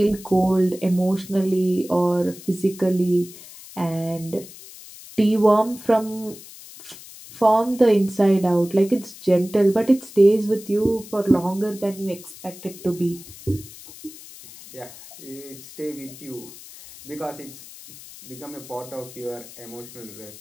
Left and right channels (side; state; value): left; noise; hiss, 17 dB below the sound